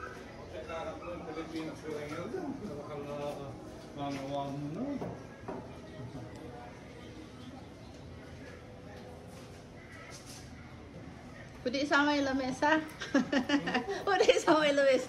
Nagkakarap mo yung Pilipinas ko lang yun. Dakal na manawa mo na. Pwede isama yung lamesa. Pwede isama yung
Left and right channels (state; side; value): identical; both; correlation 1.00